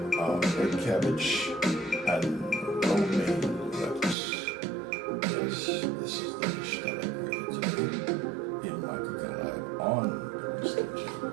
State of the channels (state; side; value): drops out; left; at 4.2 s